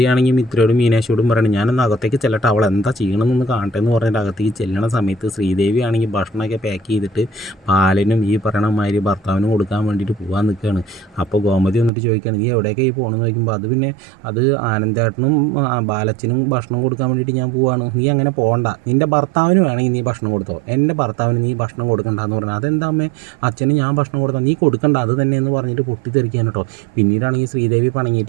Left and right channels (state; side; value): drops out; left; at 11.9 s